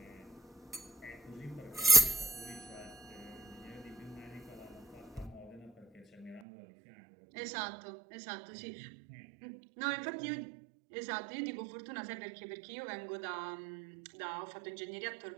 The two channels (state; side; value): drops out; left; at 6.4 s